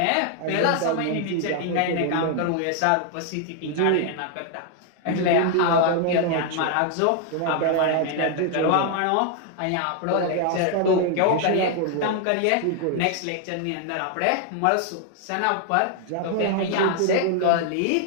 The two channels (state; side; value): different; both; correlation 0.00